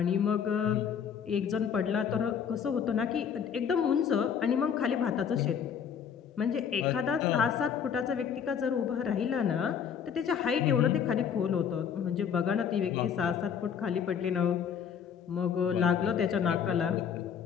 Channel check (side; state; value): right; quieter; 7.6 dB